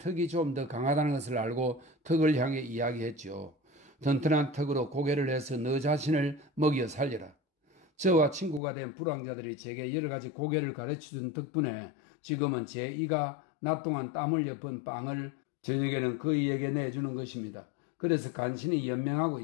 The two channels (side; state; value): right; drops out; at 8.6 s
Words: 좀 더 강하다는 것을 알고 턱을 향해 이야기했죠. 튼튼한 턱으로 고개를 해서 너 자신을 먹여 살려라. 저와 친구가 된 불황자들이 제게 여러 가지 고개를 가르쳐준 덕분에 지금은 제 이가 낮 동안 땀 흘려 번 빵을 저녁에는 그이에게 내주는 것입니다. 그래서 간신히 연명하고